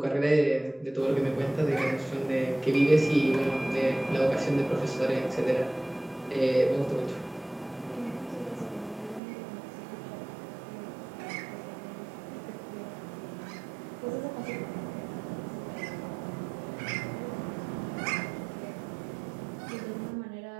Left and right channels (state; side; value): drops out; left; at 9.2 s